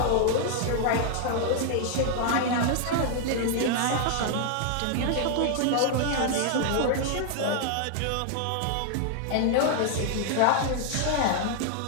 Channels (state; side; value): different; both; correlation 0.00